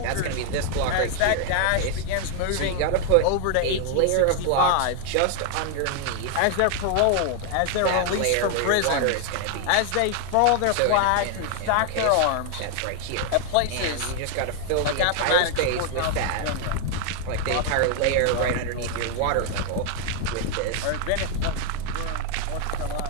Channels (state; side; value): different; both; correlation 0.00